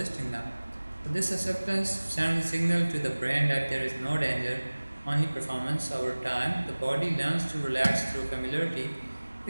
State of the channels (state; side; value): inverted; both; correlation -1.00